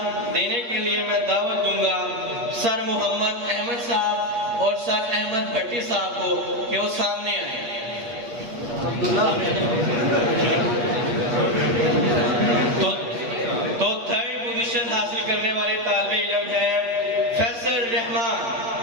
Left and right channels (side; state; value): left; late; 8.3 ms